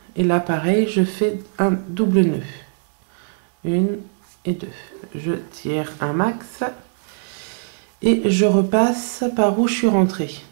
et là pareil, je fais un double nœud. 1 et 2. Je tire un max et je repasse par où je suis rentrée.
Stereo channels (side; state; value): left; silent; digital silence